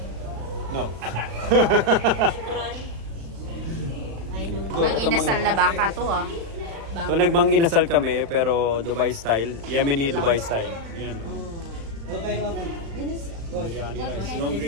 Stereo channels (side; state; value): left; late; 36 ms